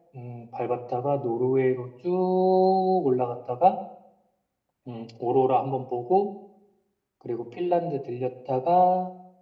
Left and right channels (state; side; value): identical; both; correlation 1.00